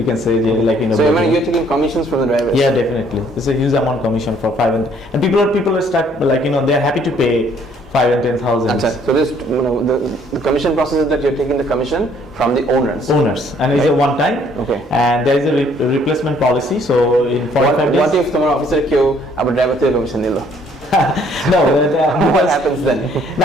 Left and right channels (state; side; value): normal; both; correlation 0.62